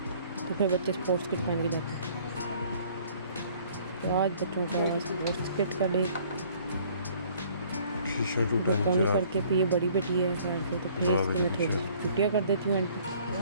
तो फिर बच्चे स्पोर्ट्स किट पहन के जाते हैं। तो आज बच्चों का स्पोर्ट्स किट का डे पोनी करके, फिर ये बड़ी बेटी है खैर से, तो फिर इसके मैं थोड़ी छुट्टियाँ कर देती हूँ एंड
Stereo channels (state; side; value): inverted; both; correlation -0.57